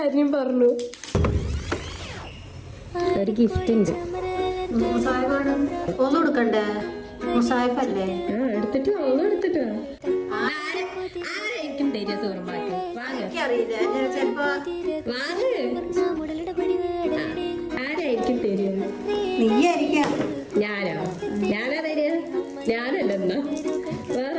പറഞ്ഞു. ഒരു ഗിഫ്റ്റ് ഉണ്ട്. ഒന്നും കൊടുക്കണ്ടേ? മുസാഫല്ലേ? എടുത്തിട്ട് എടുത്തിട്ടോ. ആരായിരിക്കും തരിക സൂറുമാക്ക്? എനിക്കറിയില്ല. ചിലപ്പോ ആരായിരിക്കും തരിക? നീയായിരിക്കാം. ഞാനോ? ഞാനാ തരിക? ഞാനല്ലെന്നാ വേറെ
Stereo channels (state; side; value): identical; both; correlation 1.00